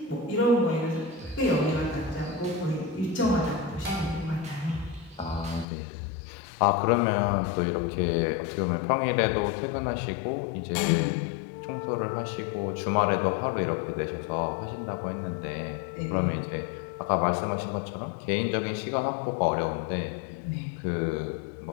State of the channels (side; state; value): right; drops out; at 5.7 s